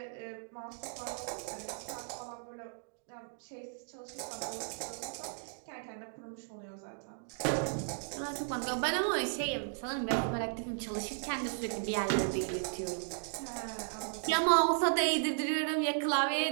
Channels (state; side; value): silent; left; digital silence